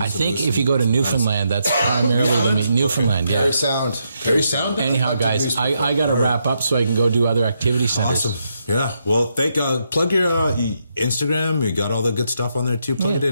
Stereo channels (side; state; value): both; inverted; correlation -0.80